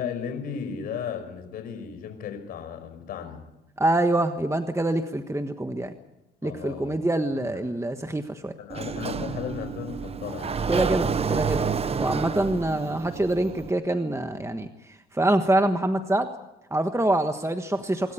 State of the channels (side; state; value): both; normal; correlation 0.77